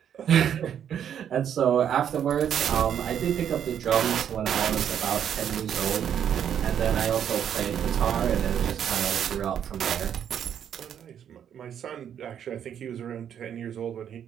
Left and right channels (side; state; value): left; quieter; 9.1 dB